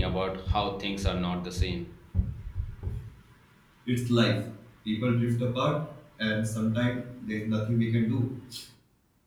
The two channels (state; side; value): identical; both; correlation 1.00